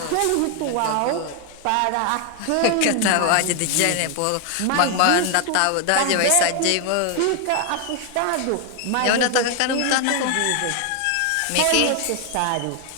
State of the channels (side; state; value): both; different; correlation 0.01